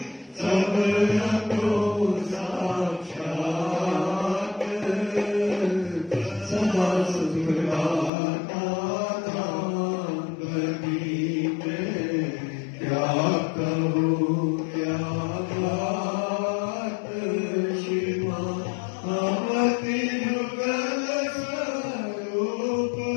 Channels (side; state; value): right; drops out; at 8.1 s